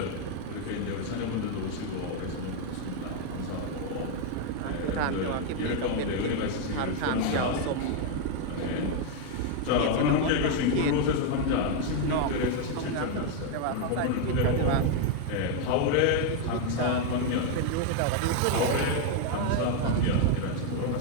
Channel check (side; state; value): both; different; correlation 0.01